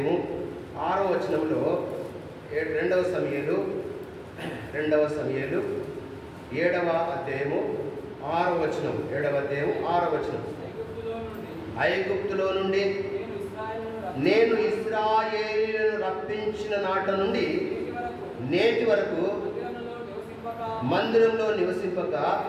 6వ వచనంలో, రెండవ సమూయేలు 7వ అధ్యాయము 6వ వచనం, 7వ అధ్యాయం 6వ వచనం. ఐగుప్తులో నుండి నేను ఇశ్రాయేలును రప్పించిన నాట నుండి నేటి వరకు మందిరంలో నివసింపక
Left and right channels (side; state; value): both; identical; correlation 1.00